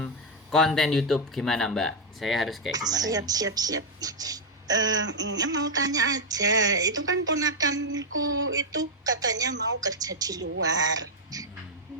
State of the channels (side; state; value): both; normal; correlation 0.00